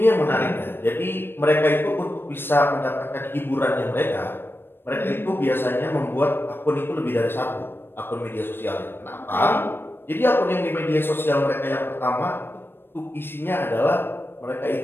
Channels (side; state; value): right; late; 0.10 ms